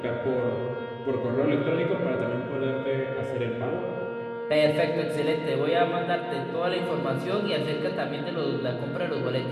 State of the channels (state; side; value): identical; both; correlation 1.00